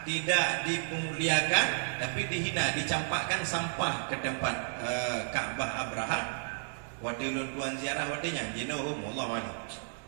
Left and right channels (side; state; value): left; silent; digital silence